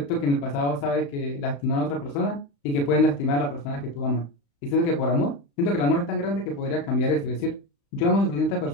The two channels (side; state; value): right; late; 35 ms